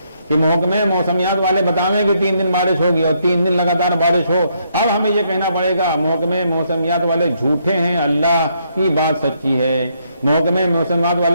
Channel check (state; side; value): inverted; both; correlation -0.74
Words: کہ محکمے موسمیات والے بتاویں کہ 3 دن بارش ہوگی اور 3 دن لگاتار بارش ہو، اب ہمیں یہ کہنا پڑے گا محکمے موسمیات والے جھوٹے ہیں، اللہ کی بات سچی ہے۔ محکمے موسمیات